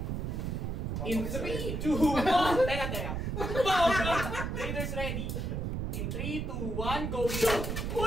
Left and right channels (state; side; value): noise; right; rumble, 2 dB below the sound